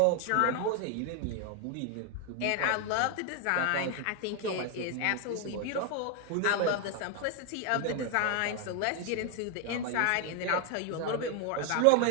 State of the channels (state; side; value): different; both; correlation 0.01